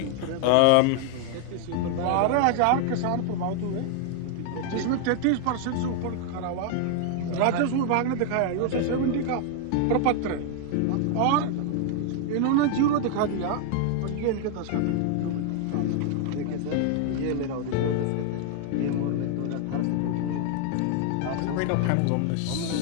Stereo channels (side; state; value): both; different; correlation 0.00